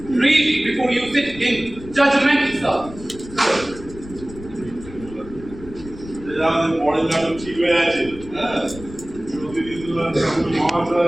read before you sit in judgment sir আমাদের পরের নাটক ঠিক হয়ে আছে হ্যাঁ প্রতিদিন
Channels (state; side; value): noise; left; rumble, 16 dB below the sound